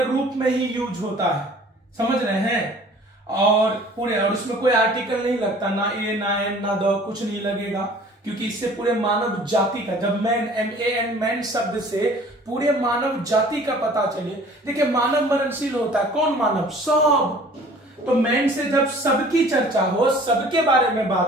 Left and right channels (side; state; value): both; normal; correlation 0.50